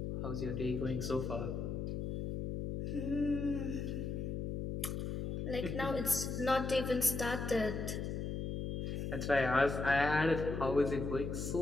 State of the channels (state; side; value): noise; left; hum, 3 dB below the sound